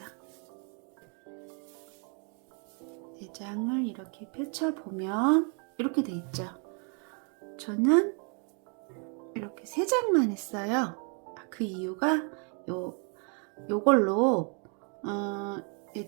4장을 이렇게 펼쳐보면 이렇게 돼 있죠. 저는 이렇게 3장만 했어요. 그 이유가 요걸로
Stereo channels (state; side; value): quieter; left; 38.8 dB